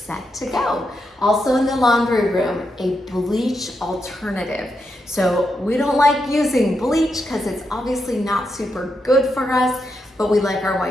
to go. Also in the laundry room, a bleach alternative. So we don't like using bleach because it's obviously not super good for us, but we like our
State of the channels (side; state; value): both; normal; correlation 0.84